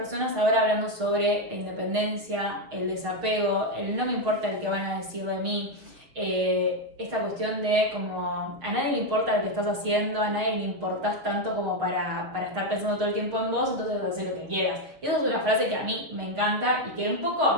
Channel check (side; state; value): left; late; 6.7 ms